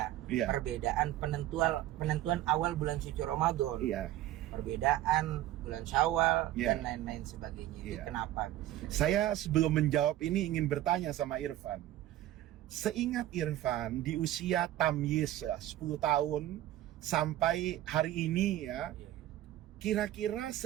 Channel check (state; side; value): quieter; left; 13.9 dB